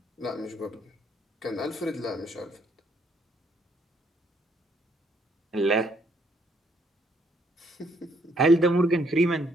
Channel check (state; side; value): normal; both; correlation 0.69